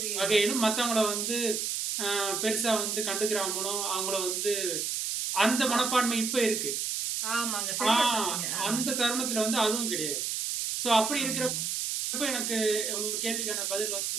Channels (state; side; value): noise; right; hiss, 1 dB below the sound